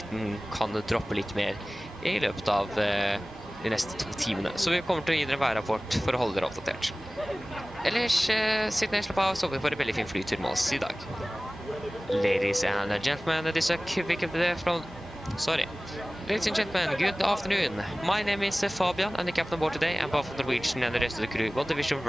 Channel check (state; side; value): normal; both; correlation 0.98